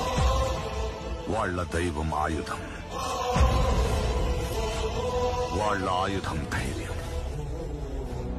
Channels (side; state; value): both; identical; correlation 1.00